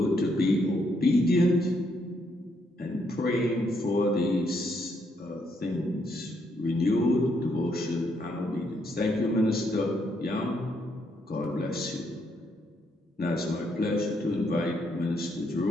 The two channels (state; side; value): normal; both; correlation 0.74